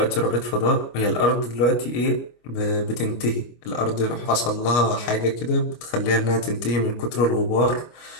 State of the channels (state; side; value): late; right; 25 ms